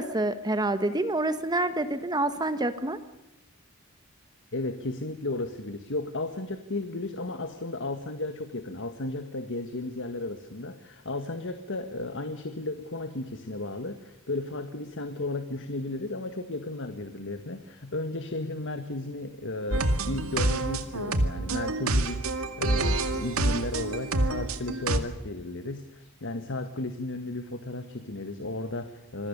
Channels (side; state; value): both; normal; correlation 0.38